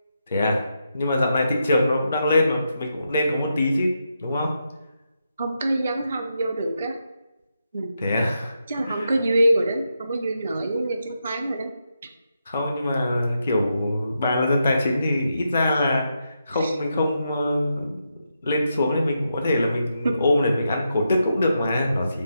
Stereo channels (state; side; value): inverted; both; correlation -0.84